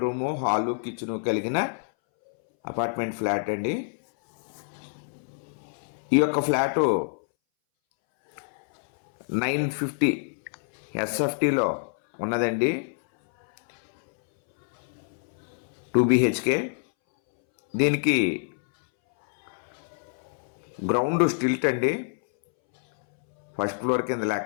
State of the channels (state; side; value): silent; right; 60 dB below the other